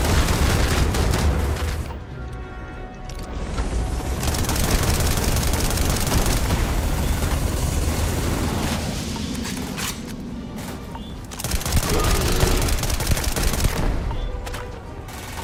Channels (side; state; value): both; identical; correlation 1.00